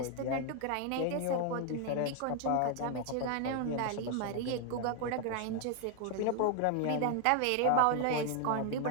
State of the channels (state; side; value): different; both; correlation 0.00